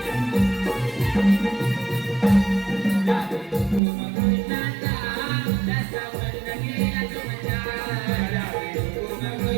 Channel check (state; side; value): drops out; left; at 3.8 s